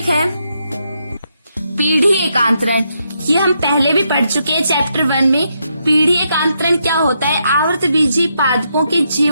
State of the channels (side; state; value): both; inverted; correlation -0.80